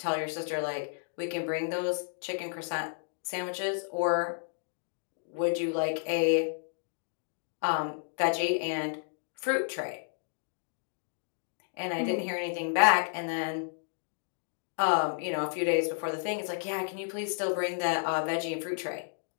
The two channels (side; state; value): right; silent; digital silence